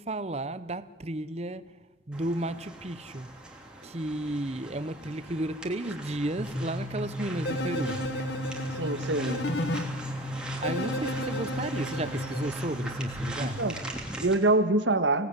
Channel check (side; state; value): both; normal; correlation 0.32